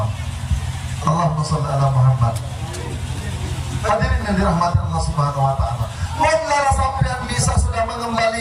Allahumma sholli ala Muhammad. Hadirin yang dirahmati Allah Subhanahu wa taala. Mulai sampean bisa sudah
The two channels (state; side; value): identical; both; correlation 1.00